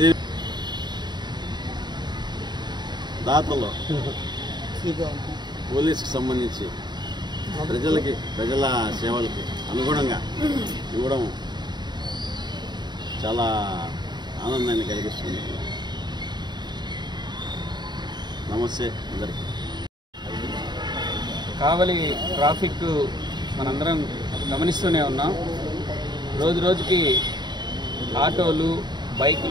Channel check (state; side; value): late; left; 0.21 ms